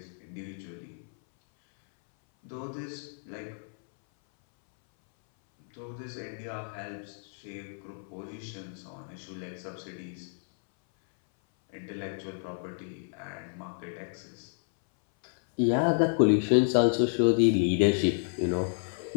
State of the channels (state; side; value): silent; right; 58 dB below the other